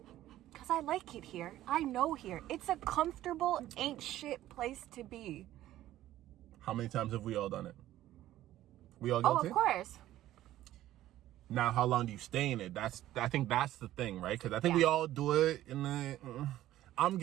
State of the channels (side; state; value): left; quieter; 14.0 dB